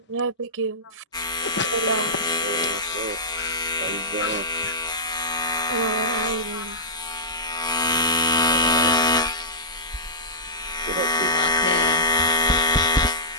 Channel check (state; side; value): normal; both; correlation -0.15